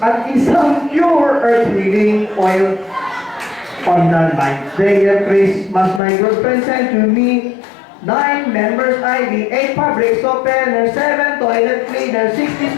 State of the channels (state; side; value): drops out; right; at 6.0 s